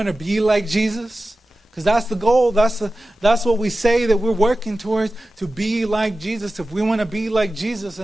to be like Jesus, because that's the goal, that's what we say that we're working towards, to be like Jesus. If we want to be like Jesus,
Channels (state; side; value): normal; both; correlation 0.94